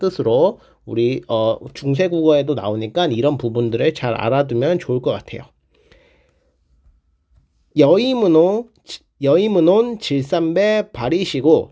우리 중세국어에도 나오니까 이런 부분들을 잘 알아두면 좋을 것 같아요. 여의문온 질삼배 발이시고,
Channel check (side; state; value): both; identical; correlation 1.00